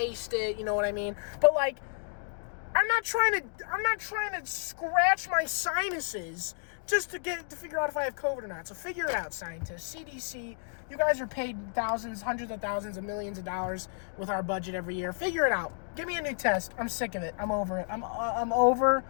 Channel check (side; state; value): right; silent; digital silence